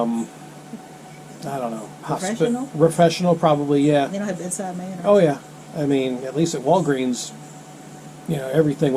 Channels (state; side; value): identical; both; correlation 1.00